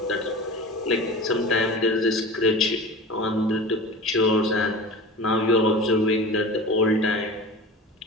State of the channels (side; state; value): both; normal; correlation 0.34